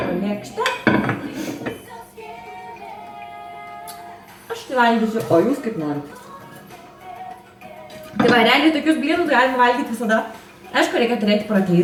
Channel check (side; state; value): both; identical; correlation 1.00